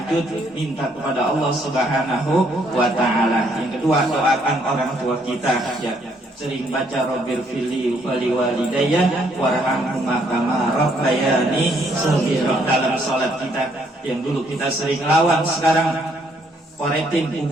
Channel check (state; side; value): normal; both; correlation 0.69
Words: minta kepada Allah Subhanahu wa Ta'ala. Yang kedua, doakan orang tua kita. Ya, sering baca Rabbir fili wali walidayya warhamhuma kama rabbayani shaghira dalam sholat kita. Yang dulu kita sering lawan, sekarang koretin